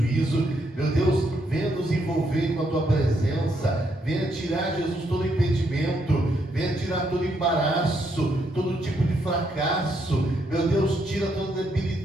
Meu Deus, venha nos envolver com a Tua presença, venha tirar, Jesus, todo impedimento, venha tirar todo embaraço, todo tipo de fracasso. Meu Deus, tira toda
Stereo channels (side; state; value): both; normal; correlation 0.76